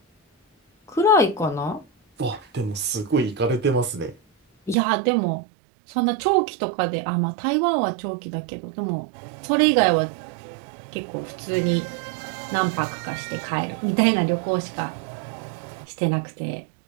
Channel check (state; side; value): drops out; left; at 4.8 s